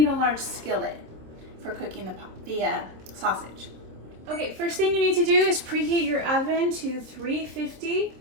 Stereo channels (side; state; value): left; late; 26 ms